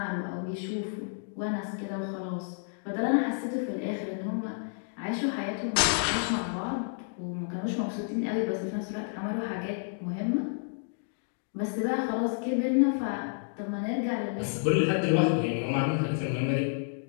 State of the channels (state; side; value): silent; right; digital silence